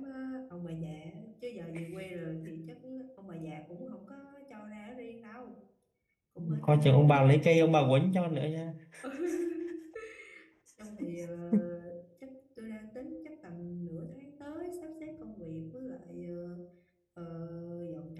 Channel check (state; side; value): identical; both; correlation 1.00